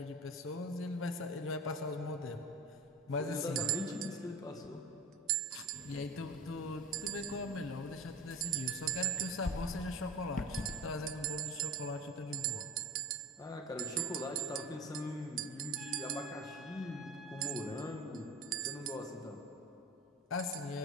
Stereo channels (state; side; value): normal; both; correlation 0.32